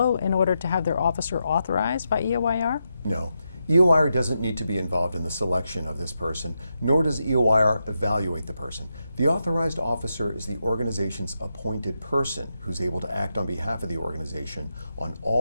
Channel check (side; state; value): both; inverted; correlation -0.85